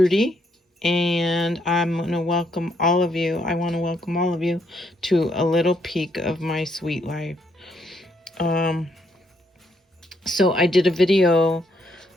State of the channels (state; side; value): normal; both; correlation 0.73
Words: and I'm going to welcome all of you. I want to welcome all of you to a little peek of my sweet life. So I did a video